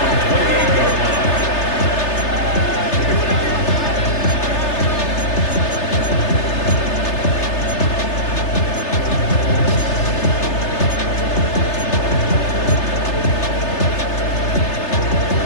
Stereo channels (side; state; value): right; late; 3.3 ms